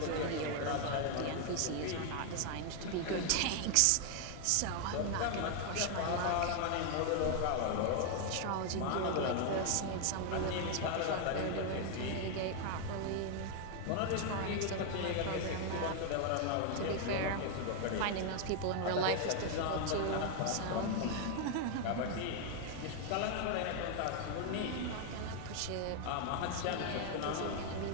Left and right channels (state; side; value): different; both; correlation 0.00